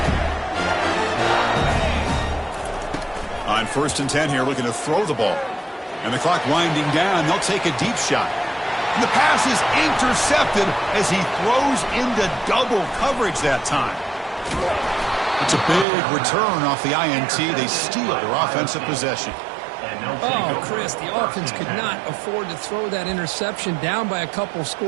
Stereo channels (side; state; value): left; drops out; at 15.9 s